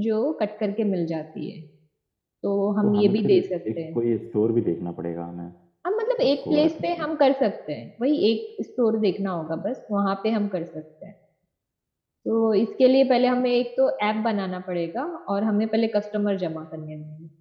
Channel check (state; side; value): identical; both; correlation 1.00